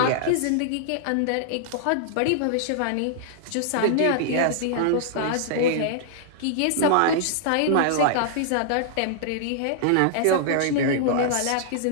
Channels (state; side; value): different; both; correlation -0.01